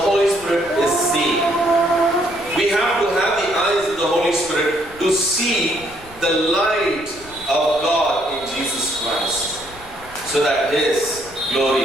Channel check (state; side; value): noise; left; rumble, 21 dB below the sound